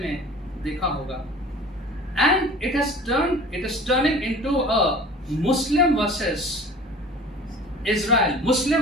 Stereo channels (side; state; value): both; normal; correlation 0.43